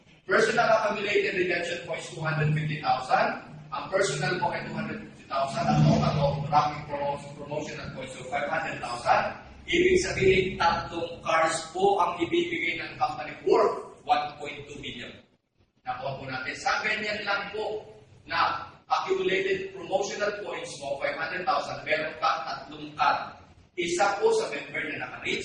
Personal accumulated redemption points, 250,000. Ang personal po ay 250,000. Ang total of ranking promotional points, so 500,000. Ibig sabihin, 3 cars po ang ibibigay ng company worth 1.2 million. Nakuha po natin. Sa ganyan lang po na accumulated promotional points mo, 500,000, meron ka 3 card. Isa po sa member na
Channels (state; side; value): identical; both; correlation 1.00